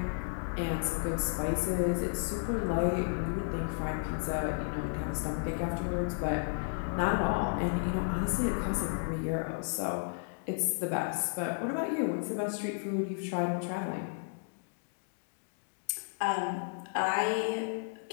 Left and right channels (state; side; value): silent; right; digital silence